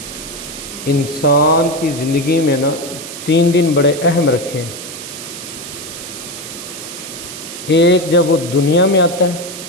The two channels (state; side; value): noise; right; hiss, 11 dB below the sound